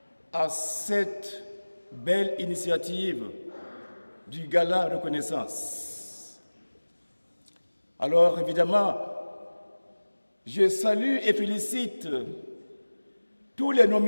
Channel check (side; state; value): both; inverted; correlation -1.00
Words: à cette belle initiative du Gala Reconnaissance. Alors, évidemment, je salue et félicite tous les